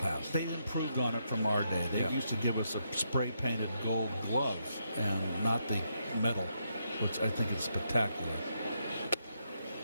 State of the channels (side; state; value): both; inverted; correlation -0.79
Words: They improved on it from our day. They used to give us a spray-painted gold glove and not the metal, which I think is spectacular.